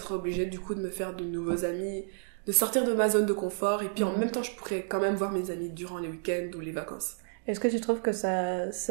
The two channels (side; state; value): left; silent; digital silence